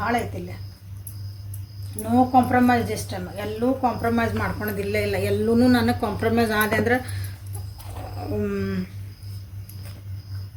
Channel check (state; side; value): identical; both; correlation 1.00